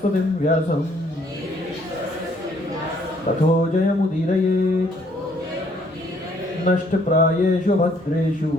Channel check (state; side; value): normal; both; correlation 0.65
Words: व्यासं ततो जयमुदीरयेत्। नष्टप्रायेषु भद्रेषु